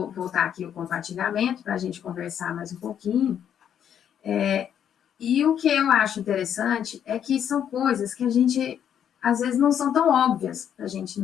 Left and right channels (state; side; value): quieter; right; 9.1 dB